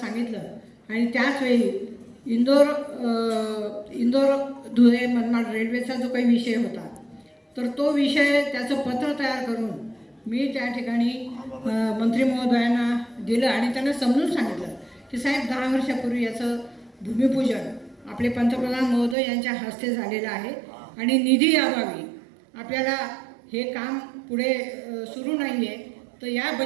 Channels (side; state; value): left; drops out; at 19.2 s